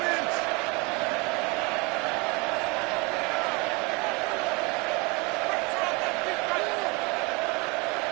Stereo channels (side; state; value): left; quieter; 28.1 dB